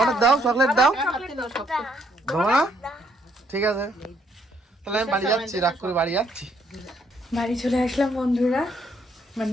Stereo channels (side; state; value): both; normal; correlation 0.70